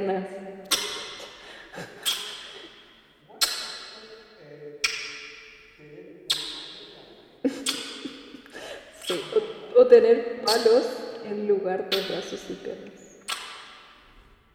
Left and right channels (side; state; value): both; identical; correlation 1.00